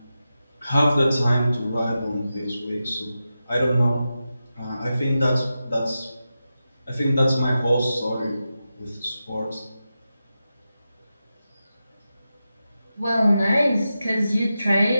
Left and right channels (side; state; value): both; inverted; correlation -0.91